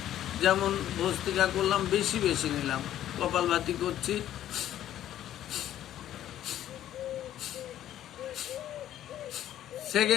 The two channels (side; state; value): right; quieter; 12.0 dB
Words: যেমন ভস্ত্রিকা করলাম, বেশি বেশি নিলাম। কপালভাতি করছি,